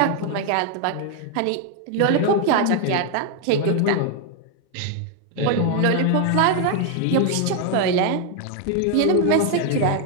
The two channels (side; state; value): both; different; correlation 0.00